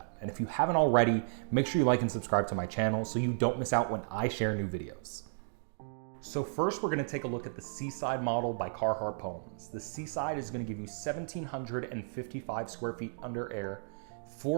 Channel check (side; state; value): left; silent; digital silence